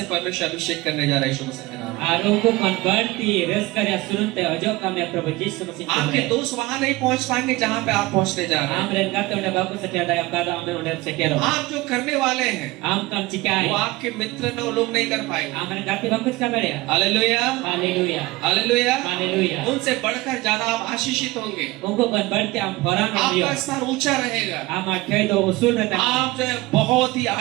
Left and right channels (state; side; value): quieter; left; 20.5 dB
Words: परमेश्वर अभिषेक करने जा रहा है यीशु मसीह के नाम में। Arungku kon berti. Reskarya surun te ojo kami Prabu Yesus Masihi. आपके दोस्त वहां नहीं पहुंच पाएंगे जहां पे आप पहुंचने जा रहे हैं। Am re kata udah baku setia daya kata am udah setia ro. आप जो करने वाले हैं, Am kan cikai. वो आपके मित्र न वो लोग नहीं कर पाएंगे। Am re gati bagus kabar ya. Hallelujah, Haleluya. Hallelujah. Haleluya. उनसे बढ़कर ज्यादा आप आशीषित होंगे, Ungu kon berti am horan am dia. आपका स्तर ऊंचा रहेगा, Am akhir do usul rata. आप जो है बहुत ही